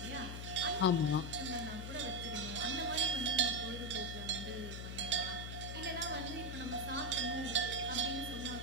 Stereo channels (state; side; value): noise; left; hum, 6 dB below the sound